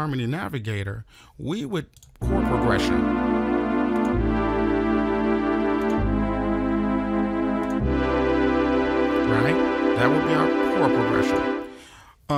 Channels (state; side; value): identical; both; correlation 1.00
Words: Navigator, we would chord progression. Right? That would be our chord progression.